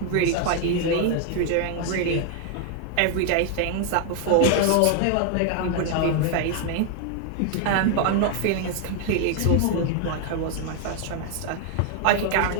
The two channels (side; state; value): both; different; correlation 0.00